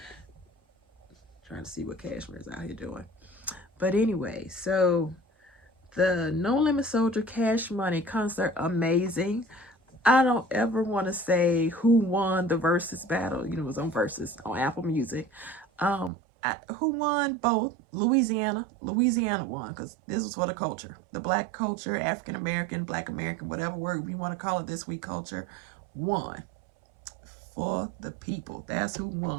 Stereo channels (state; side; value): drops out; left; at 16.1 s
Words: Trying to see what Cashmere is out here doing. But anyway, so the No Limit Soldier Cash Money concert, amazing. I don't ever want to say who won the versus battle. You know, it was on Versus on Apple Music. Who won both? Louisiana. Louisiana won because this was for the culture. The black culture, African American, black American, whatever word we want to call it this week, culture won for the people. That's who